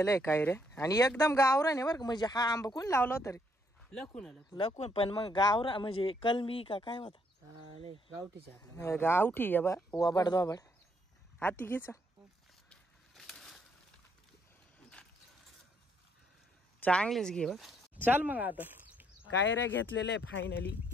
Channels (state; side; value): normal; both; correlation 0.71